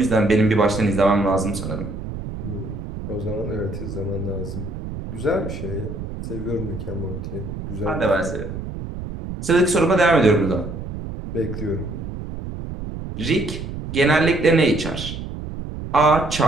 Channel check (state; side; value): noise; right; rumble, 8 dB below the sound